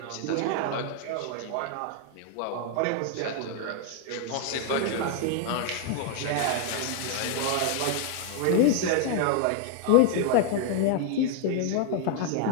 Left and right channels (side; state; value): both; different; correlation 0.00